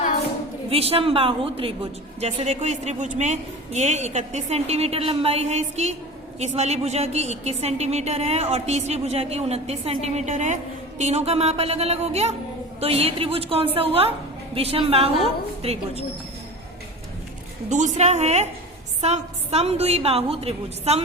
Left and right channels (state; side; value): normal; both; correlation 0.33